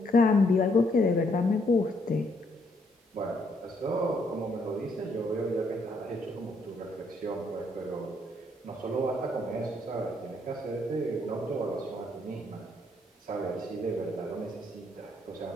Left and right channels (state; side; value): normal; both; correlation 0.71